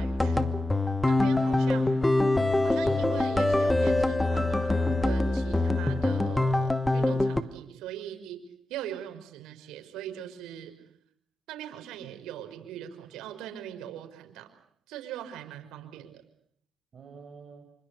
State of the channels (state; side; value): normal; both; correlation 0.92